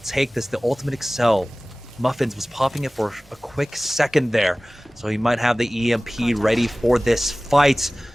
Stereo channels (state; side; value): normal; both; correlation 0.98